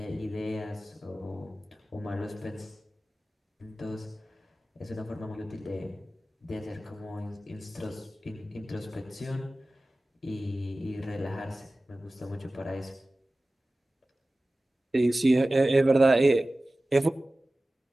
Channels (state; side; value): normal; both; correlation 0.96